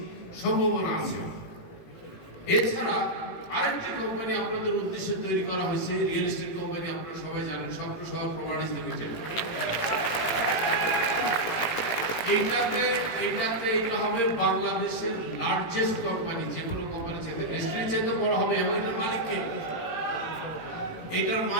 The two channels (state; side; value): late; right; 18 ms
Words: সম্ভাবনা আছে। এছাড়া আরেকটি কোম্পানি আপনাদের উদ্দেশ্যে তৈরি করা হয়েছে, রিয়েল এস্টেট কোম্পানি, আপনারা সবাই জানেন স্বপ্ন শহর প্রপার্টিজ লিমিটেড। এইটা হবে বাংলাদেশের লার্জেস্ট কোম্পানি, যে কোনো কোম্পানি চাইতে ডেস্টিনি চাইতে বড় হবে। এবং এটার মালিককে, এটার